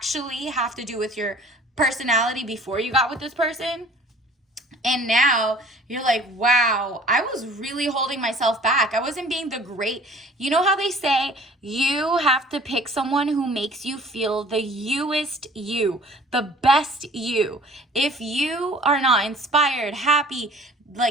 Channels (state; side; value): normal; both; correlation 0.50